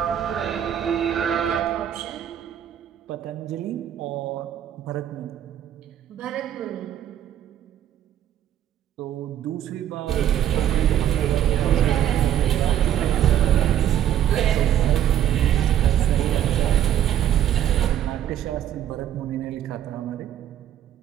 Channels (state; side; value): quieter; left; 10.8 dB